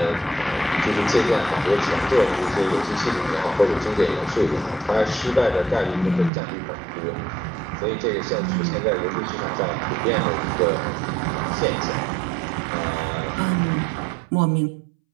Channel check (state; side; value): drops out; left; at 6.3 s